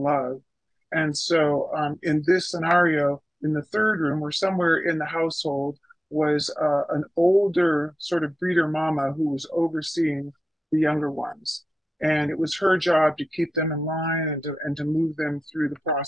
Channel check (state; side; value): normal; both; correlation 0.93